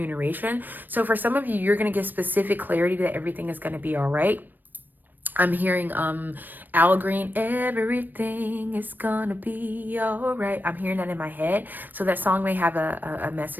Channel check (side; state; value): left; late; 0.091 ms